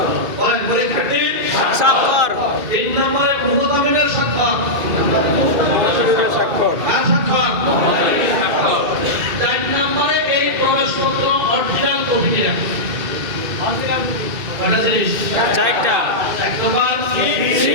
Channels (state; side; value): late; left; 2.3 ms